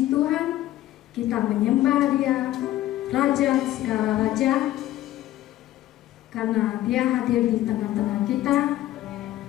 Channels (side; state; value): right; quieter; 14.4 dB